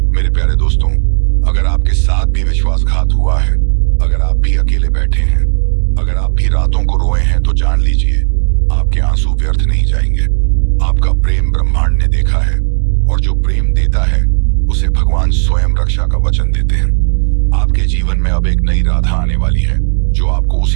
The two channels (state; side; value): silent; left; digital silence